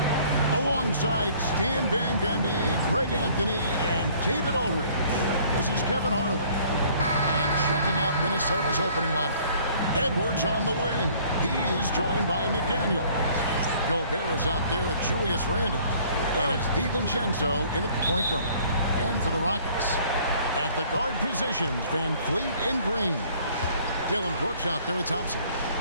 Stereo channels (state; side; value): inverted; both; correlation -0.56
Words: Alongside Stan Van Gundy, Greg Anthony, and David Aldridge, this is Kevin Harlan. And checking out Minnesota's opening lineup. Edwards on the wing. He's joined by McDaniel. Gobert is out there with Julius Randle. And it's DiVincenzo in at the point guard. And for the Rockets, at the guard positions, Van Fleet and Green. Dylan Brooks out there with Thompson.